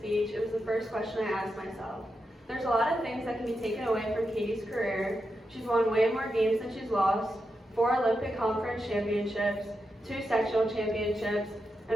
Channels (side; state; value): both; normal; correlation 0.87